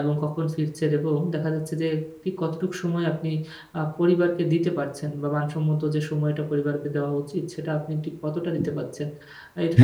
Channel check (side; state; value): both; identical; correlation 1.00